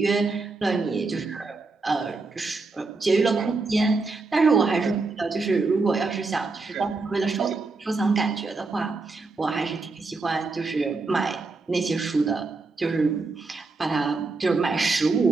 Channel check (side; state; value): left; quieter; 3.9 dB